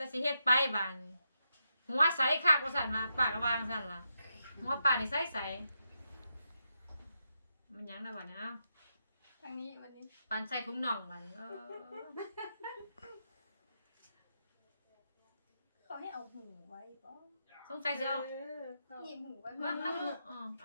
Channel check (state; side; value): inverted; both; correlation -0.84